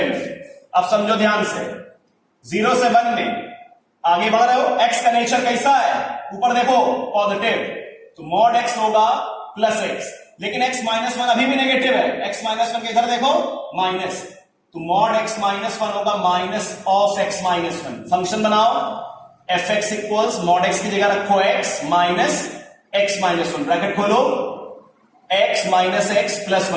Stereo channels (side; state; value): both; identical; correlation 1.00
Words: में। अब समझो ध्यान से, 0 से 1 में आगे बढ़ रहे हो, x का नेचर कैसा है, ऊपर देखो पॉजिटिव, तो मॉड x होगा प्लस x, लेकिन x माइनस 1 अभी भी नेगेटिव है, x माइनस 1 के इधर देखो माइनस, तो मॉड x माइनस 1 होगा minus of x minus 1। Function बनाओ, F X equals mod x की जगह रखो x minus x minus 1, bracket खोलो, x minus x plus